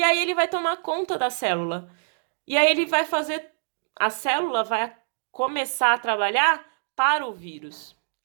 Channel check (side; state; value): left; silent; digital silence